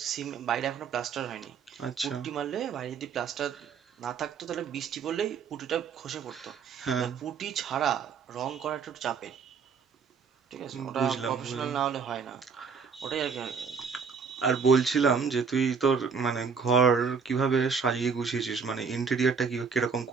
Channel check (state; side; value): quieter; left; 5.7 dB